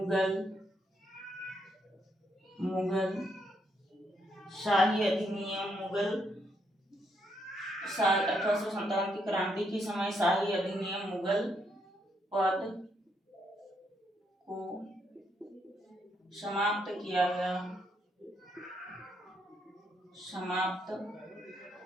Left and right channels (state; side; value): normal; both; correlation 0.76